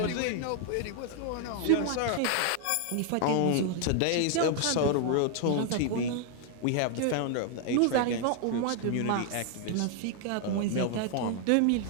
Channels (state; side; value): different; both; correlation 0.00